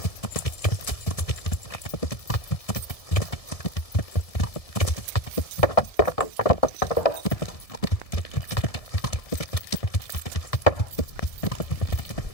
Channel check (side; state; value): right; late; 1.7 ms